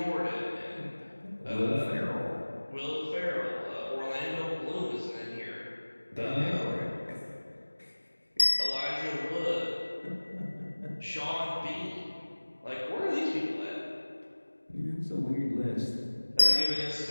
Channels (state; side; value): inverted; both; correlation -1.00